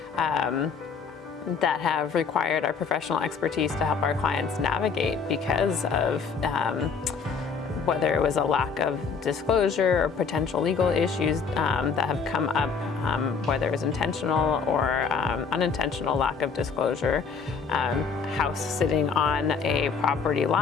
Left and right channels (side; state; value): right; quieter; 5.7 dB